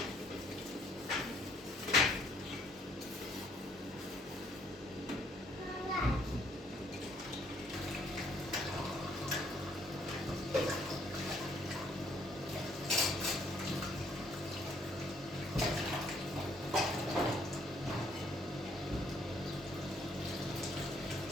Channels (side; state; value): both; normal; correlation 0.66